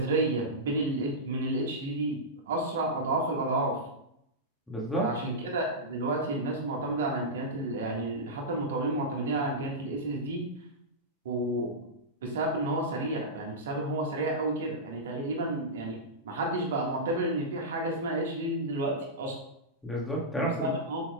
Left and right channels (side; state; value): both; normal; correlation -0.12